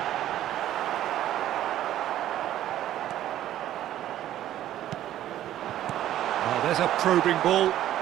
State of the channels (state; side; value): quieter; left; 12.6 dB